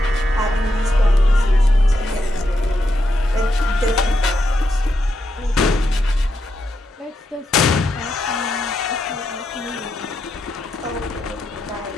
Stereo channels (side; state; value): both; normal; correlation 0.83